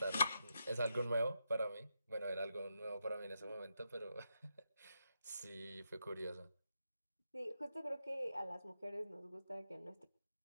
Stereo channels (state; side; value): inverted; both; correlation -0.84